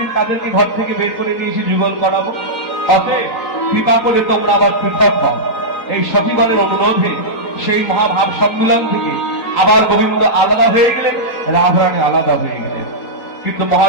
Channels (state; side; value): late; right; 4.1 ms